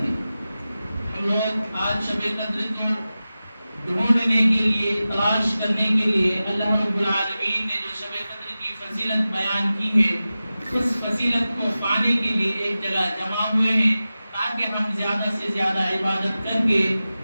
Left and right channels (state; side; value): inverted; both; correlation -0.95